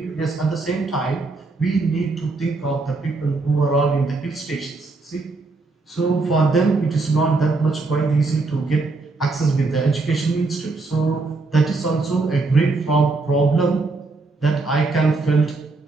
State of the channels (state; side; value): quieter; left; 3.6 dB